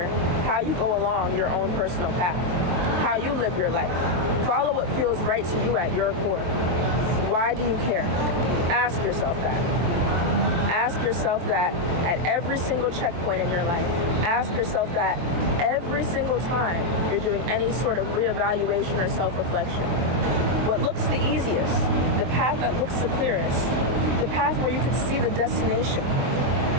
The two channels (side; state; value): left; late; 23 ms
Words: how you go along your own personal path, how you live your life. Follow what feels right to you at your core. Why do you care? Ask yourself that. Ask yourself that at every single checkpoint in your life. Ask yourself that every single time you're doing any sort of reevaluation or self-reflection. What looks the easiest, the path that looks the clearest, the path where you can see the destination